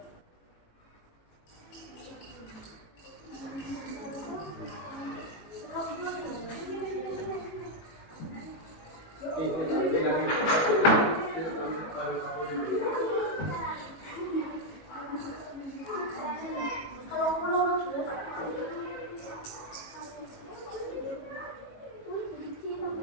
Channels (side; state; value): right; late; 18 ms